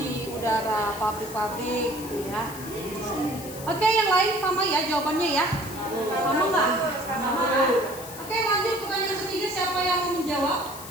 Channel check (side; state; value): left; noise; hiss, 13 dB below the sound